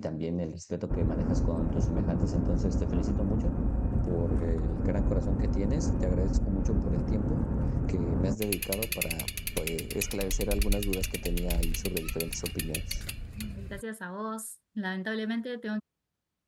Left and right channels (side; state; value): both; identical; correlation 1.00